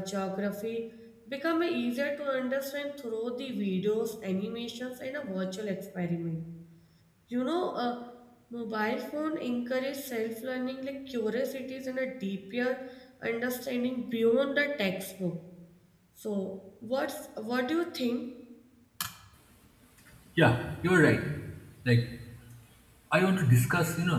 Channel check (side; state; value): both; identical; correlation 1.00